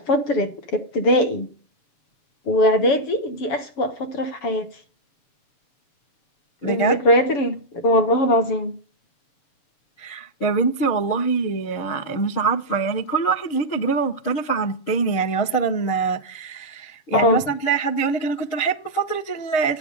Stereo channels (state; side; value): late; right; 7.0 ms